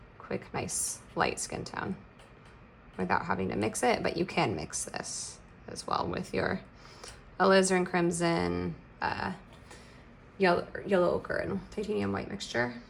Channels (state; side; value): identical; both; correlation 1.00